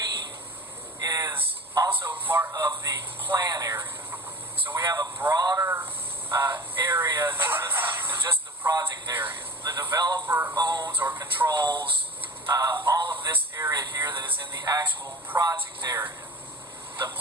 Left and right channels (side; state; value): both; normal; correlation 0.37